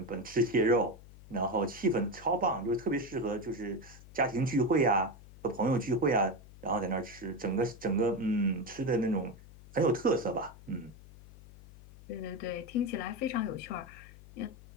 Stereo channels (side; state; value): left; noise; hum, 19 dB below the sound